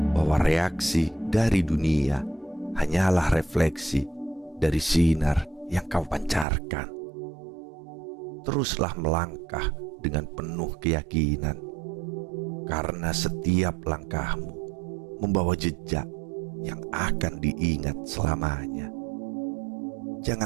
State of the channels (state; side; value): drops out; left; at 6.5 s